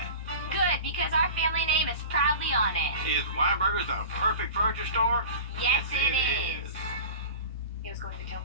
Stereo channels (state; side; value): inverted; both; correlation -0.34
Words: Good, because our family name is proudly on it. Is Weinberger's the perfect furniture store? Yes, it is. He was going to tell